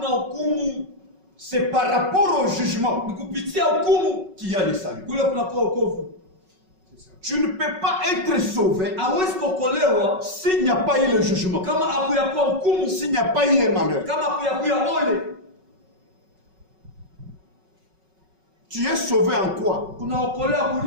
C'est par rapport au jugement qu'il y a le salut. Tu ne peux pas être sauvé s'il n'y a pas eu le jugement, s'il n'y a pas eu un malheur. Tu es sauvé en quoi?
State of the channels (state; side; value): late; left; 5.4 ms